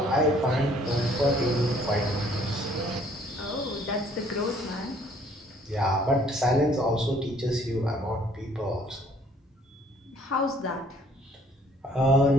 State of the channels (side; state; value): both; normal; correlation 0.60